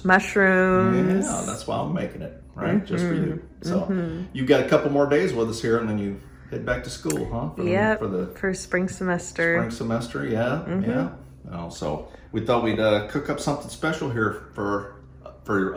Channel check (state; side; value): identical; both; correlation 1.00